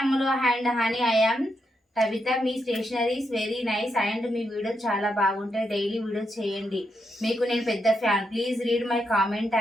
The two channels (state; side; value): normal; both; correlation 0.82